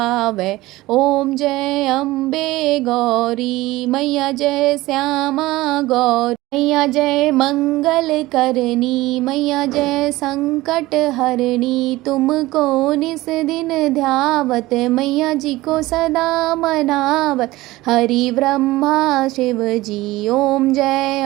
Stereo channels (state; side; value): quieter; left; 18.5 dB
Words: ओम जय अम्बे गौरी। मैया जय श्यामा गौरी। मैया जय मंगल करनी, मैया जय संकट हरणी। तुमको निस दिन ध्यावत, मैया जी को सदा मनावत, हरि ब्रह्मा शिव जी। ओम जय